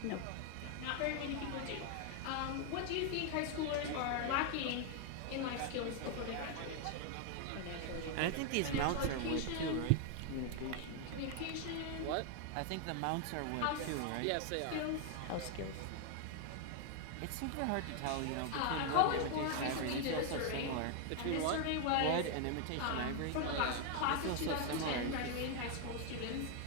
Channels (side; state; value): both; different; correlation 0.00